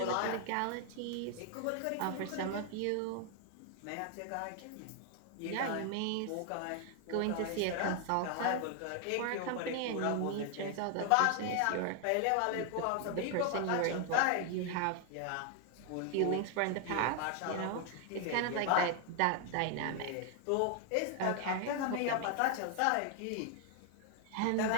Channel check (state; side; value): different; both; correlation 0.00